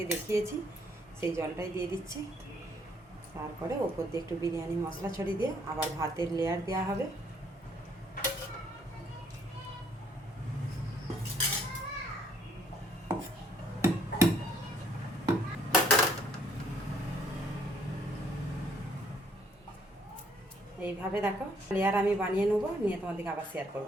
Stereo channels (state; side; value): normal; both; correlation 0.64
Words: দেখিয়েছি, সেই জলটাই দিয়ে দিচ্ছি। তারপরে ওপর দিয়ে একটু বিরিয়ানি মশলা ছড়িয়ে দিয়ে আবার ভাতের লেয়ার দেওয়া হবে। এইভাবে দেখো লেয়ার আমি বানিয়ে নেবো, নিয়ে তোমাদেরকে আবার শেয়ার